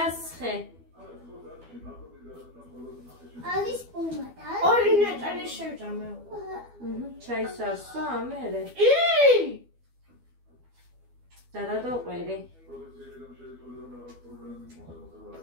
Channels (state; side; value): late; left; 12 ms